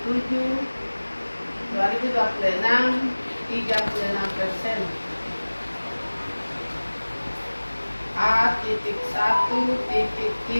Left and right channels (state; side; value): inverted; both; correlation -1.00